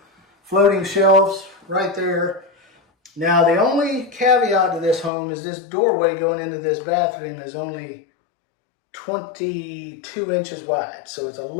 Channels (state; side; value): drops out; right; at 5.1 s